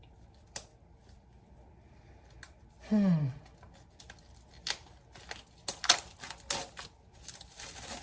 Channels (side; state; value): both; identical; correlation 1.00